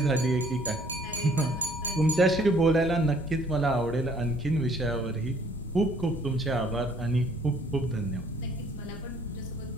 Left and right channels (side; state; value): both; normal; correlation 0.59